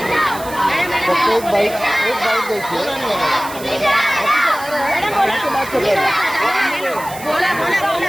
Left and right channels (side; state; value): right; noise; hiss, 15 dB below the sound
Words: फक्त एक बाईक द्यायची